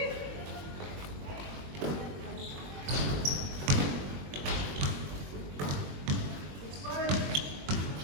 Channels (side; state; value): left; late; 21 ms